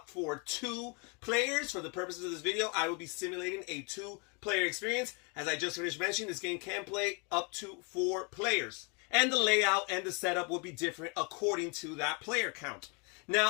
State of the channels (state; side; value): quieter; right; 33.1 dB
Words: for 2 players. For the purposes of this video, I will be simulating a 2-player experience. As I just finished mentioning, this game can play up to 4 players. And the layout and the setup will be different according to that player count.